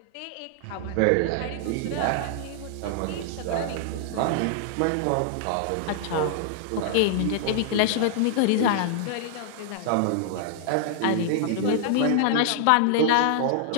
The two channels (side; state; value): both; different; correlation 0.00